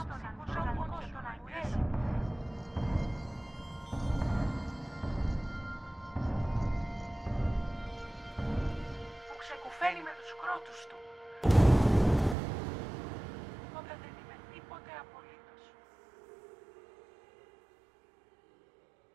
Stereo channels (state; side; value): drops out; left; at 12.4 s